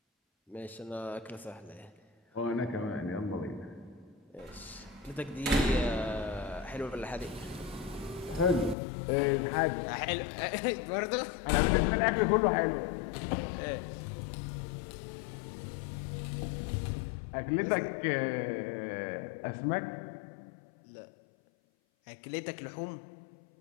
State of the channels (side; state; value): right; drops out; at 8.8 s